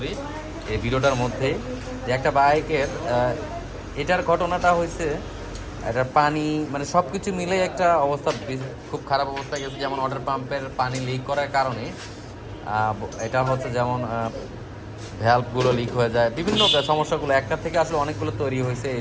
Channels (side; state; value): both; identical; correlation 1.00